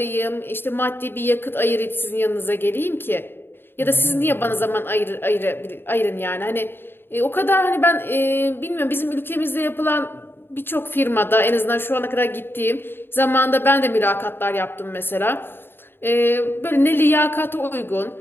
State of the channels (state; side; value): late; right; 0.10 ms